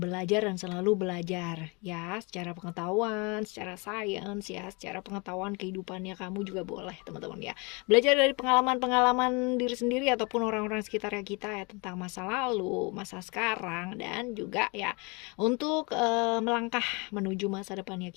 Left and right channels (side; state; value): right; quieter; 29.6 dB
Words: belajar dan selalu belajar ya, secara pengetahuan, secara sains ya, secara pengetahuan kehidupannya kamu juga boleh teman-teman ya. Belajar dari pengalaman-pengalaman diri sendiri ataupun orang-orang sekitar kita ya, tentang masa lalu, masa sekarang, dan juga ya untuk melangkah menuju masa depannya